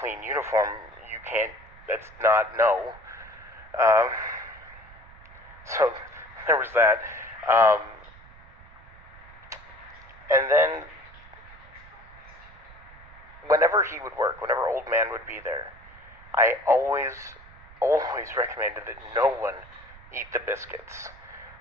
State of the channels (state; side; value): noise; right; rumble, 21 dB below the sound